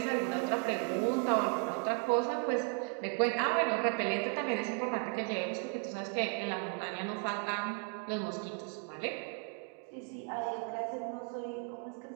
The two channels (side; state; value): left; quieter; 37.3 dB